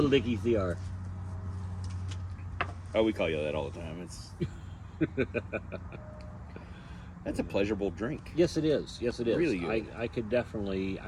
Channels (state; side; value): identical; both; correlation 1.00